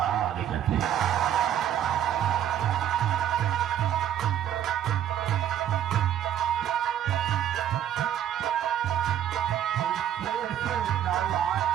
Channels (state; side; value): quieter; left; 10.5 dB